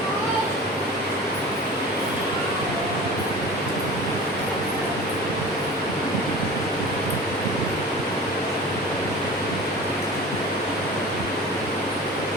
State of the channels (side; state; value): both; normal; correlation 0.37